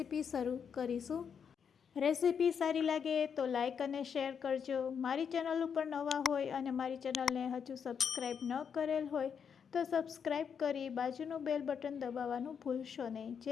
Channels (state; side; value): quieter; right; 7.1 dB